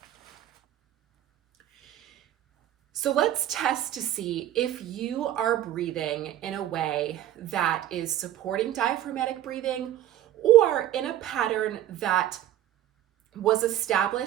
So let's test to see if you are breathing in a way that is supporting diaphragmatic breathing or in a pattern that was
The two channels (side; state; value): left; quieter; 12.4 dB